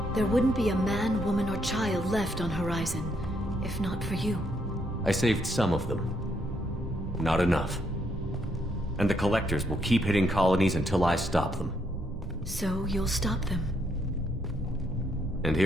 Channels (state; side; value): normal; both; correlation 0.74